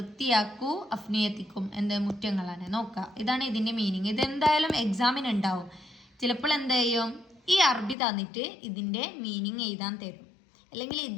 അഫ്നിയത്തിക്കും എന്ത്, മുറ്റങ്ങളാണ്. നോക്കാം, ഇതാണ് ഇതിൻ്റെ മീനിങ്. ഇതെന്തായാലും എക്സാമിന് ഉണ്ടാവും. ചിലപ്പോൾ എന്ത് ചെയ്യും, ഈ അറബി തന്നിട്ട് ഇതിൻ്റെ മീനിങ് എഴുതാൻ തരും, അല്ലെങ്കിൽ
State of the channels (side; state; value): right; drops out; at 8.0 s